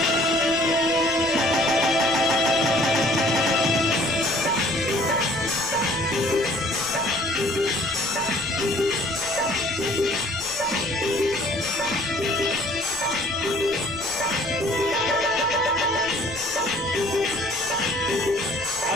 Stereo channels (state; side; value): noise; left; rumble, 21 dB below the sound